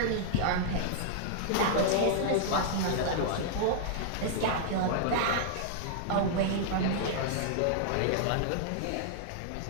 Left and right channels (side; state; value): both; different; correlation -0.01